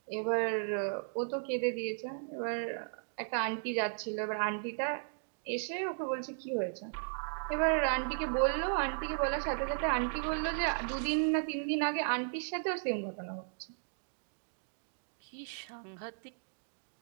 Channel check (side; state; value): left; silent; digital silence